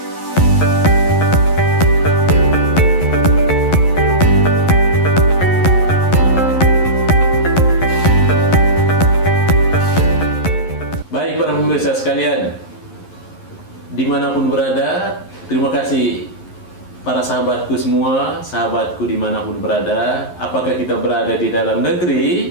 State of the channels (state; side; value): late; right; 11 ms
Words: baik para pemirsa sekalian, dimanapun berada, terima kasih para sahabatku semua, sahabatku dimanapun berada, apakah kita berada di dalam